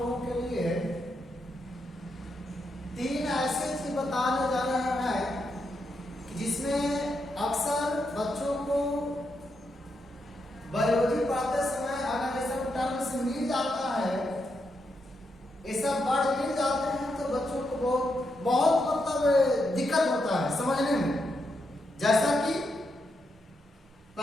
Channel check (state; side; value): normal; both; correlation 0.82